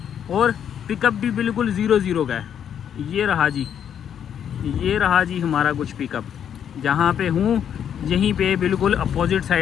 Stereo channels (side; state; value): right; quieter; 8.9 dB